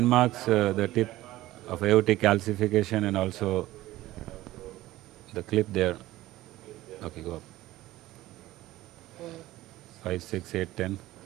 the tip of aortic calcification and also the clip there. Okay, go up. 5, 6, 8, 10.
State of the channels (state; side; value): quieter; left; 16.3 dB